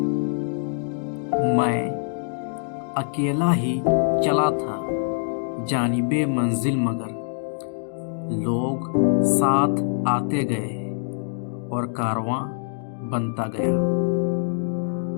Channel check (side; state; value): right; silent; digital silence